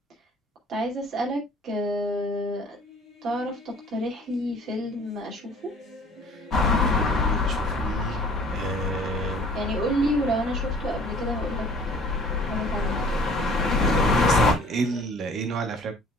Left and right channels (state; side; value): normal; both; correlation 0.51